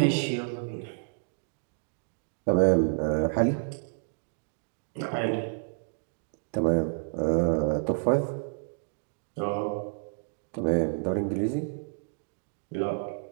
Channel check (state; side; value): silent; left; digital silence